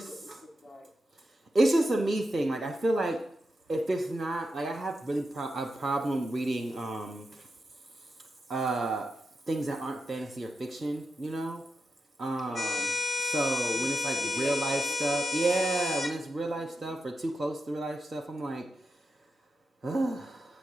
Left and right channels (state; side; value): normal; both; correlation 0.88